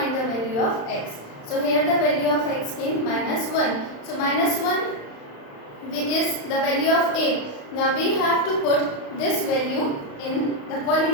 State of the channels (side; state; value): right; late; 35 ms